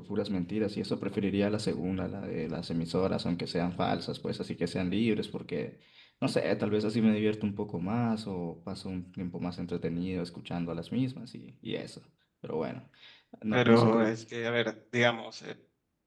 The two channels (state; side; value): identical; both; correlation 1.00